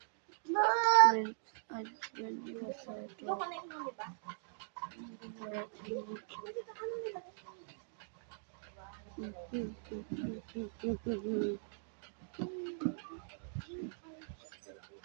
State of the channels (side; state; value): left; silent; digital silence